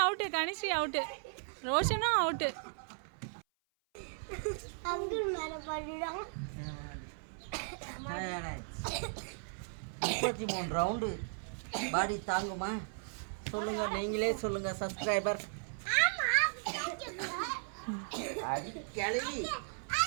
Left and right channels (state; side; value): silent; left; 54 dB below the other